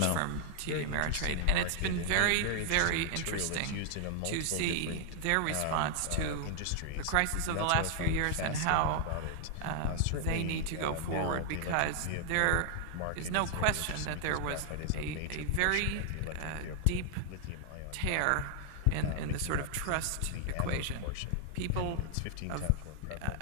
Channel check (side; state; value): both; different; correlation 0.00